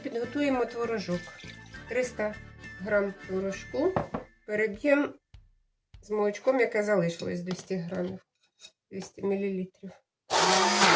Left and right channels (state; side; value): identical; both; correlation 1.00